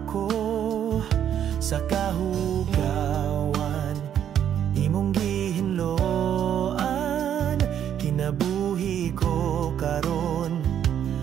sa kahugawan, imong gihinloan, kinabuhi ko karon,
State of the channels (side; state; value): left; quieter; 9.6 dB